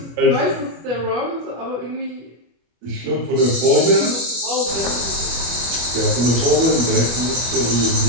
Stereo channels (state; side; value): late; left; 25 ms